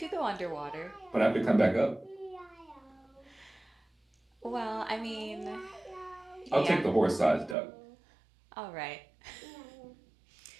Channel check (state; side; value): drops out; left; at 7.6 s